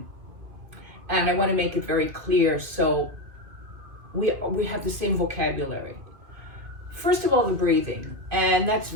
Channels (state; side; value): late; left; 2.5 ms